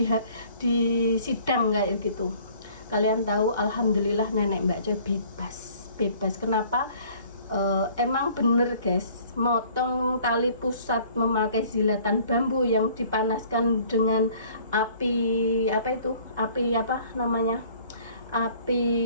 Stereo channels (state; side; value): inverted; both; correlation -0.55